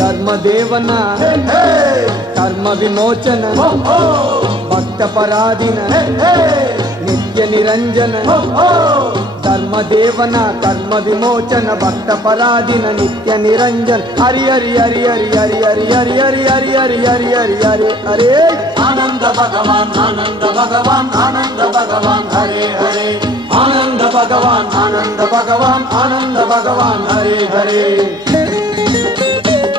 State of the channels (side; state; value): both; normal; correlation 0.55